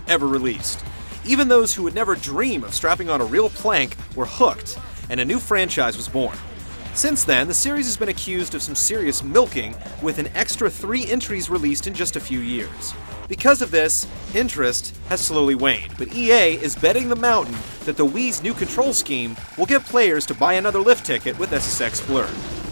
ever released. Even those who would never dream of strapping on a real plank were hooked, and a new franchise was born. Since then, the series has been accused of some serious milking, with an extra 3 entries released in just a few years. Because of this, interest has slowly waned, but EA is betting the mountain that the Wii's new control scheme will get players to buy another lift ticket with SSX Blur.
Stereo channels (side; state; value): both; inverted; correlation -1.00